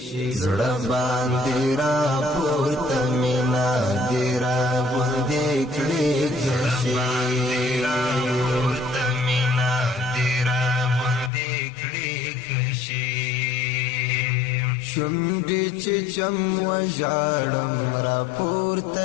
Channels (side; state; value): right; drops out; at 11.3 s